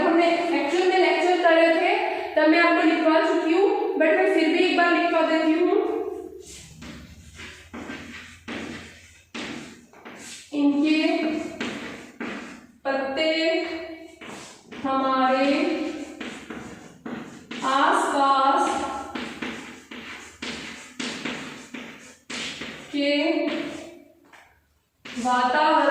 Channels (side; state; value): both; identical; correlation 1.00